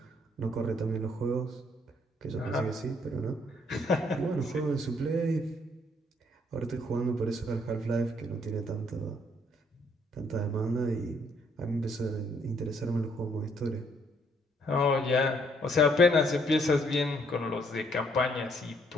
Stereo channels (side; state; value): both; normal; correlation 0.67